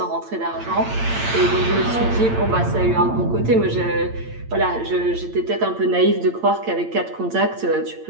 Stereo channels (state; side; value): late; left; 8.8 ms